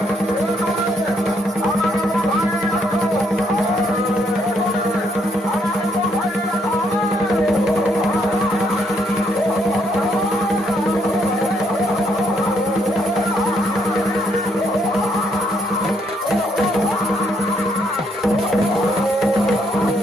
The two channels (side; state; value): both; normal; correlation 0.73